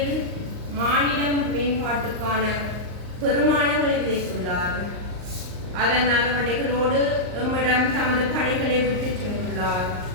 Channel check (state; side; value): late; left; 39 ms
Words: மானிடம் மேம்பாட்டுக்கான பெருமானங்களை விதைத்துள்ளார். அதன் அறுவடைகளோடு எம்மிடம் தமது பணிகளை விட்டு சென்றுள்ளார்.